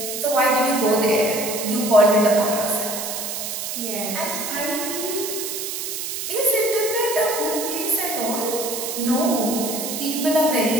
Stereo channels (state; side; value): noise; right; hiss, 5 dB below the sound